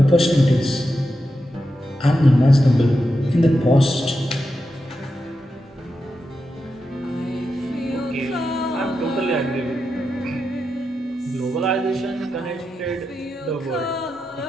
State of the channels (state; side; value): normal; both; correlation 0.88